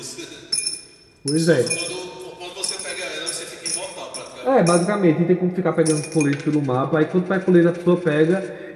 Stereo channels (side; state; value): both; identical; correlation 1.00